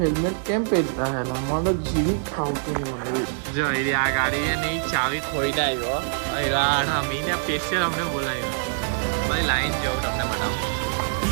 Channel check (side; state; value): left; silent; 60 dB below the other